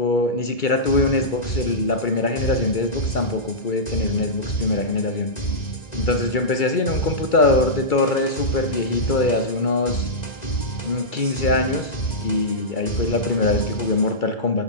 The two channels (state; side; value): late; right; 2.3 ms